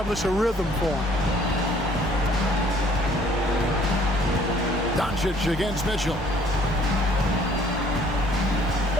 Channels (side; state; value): both; normal; correlation 0.59